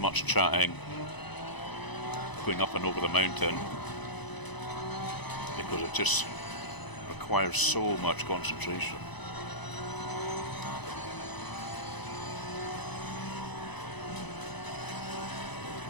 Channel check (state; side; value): late; right; 1.0 ms